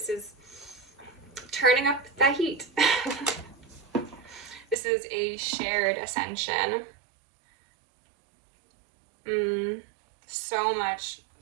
is turning up the heat. This is a shared ascension. So much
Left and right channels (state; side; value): drops out; left; at 4.8 s